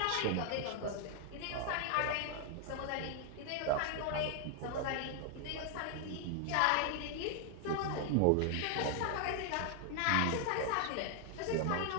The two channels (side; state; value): both; different; correlation 0.00